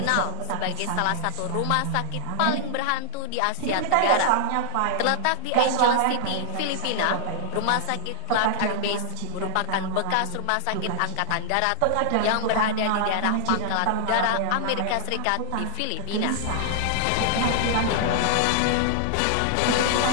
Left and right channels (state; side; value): different; both; correlation 0.00